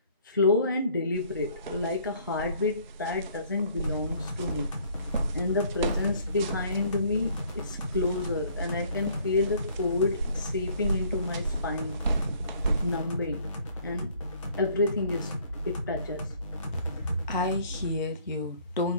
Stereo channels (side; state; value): both; inverted; correlation -0.59